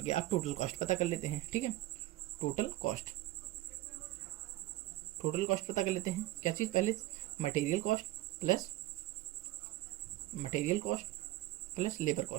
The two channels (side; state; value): left; quieter; 16.6 dB